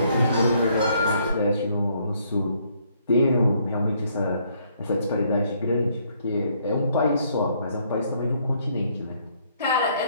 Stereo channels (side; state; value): both; inverted; correlation -0.68